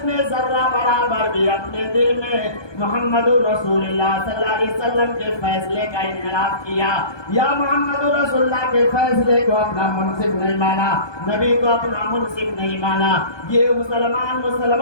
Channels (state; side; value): late; right; 1.2 ms